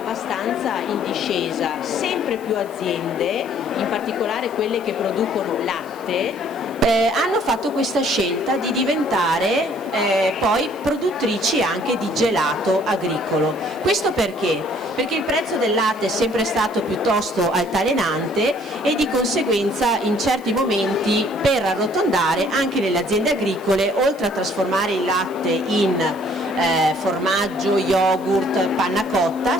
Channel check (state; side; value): noise; right; hiss, 25 dB below the sound